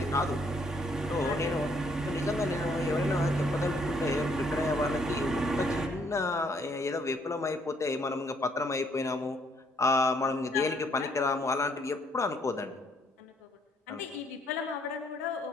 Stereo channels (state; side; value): normal; both; correlation 0.68